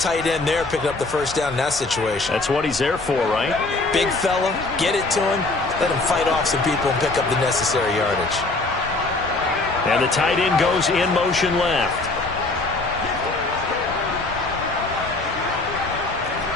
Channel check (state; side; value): quieter; right; 3.2 dB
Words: end there picking up the first down in that situation? That's what he's there for, right? Big fella, get it to him, let him fight off some people and pick up the necessary yardage. And the tight end goes in motion left.